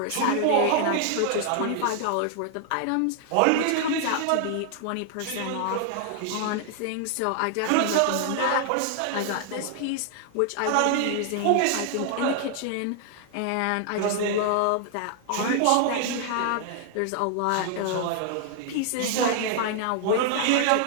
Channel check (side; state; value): both; different; correlation 0.00